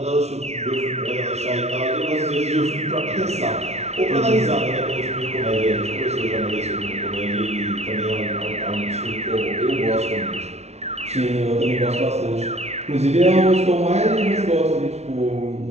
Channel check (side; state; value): left; late; 0.31 ms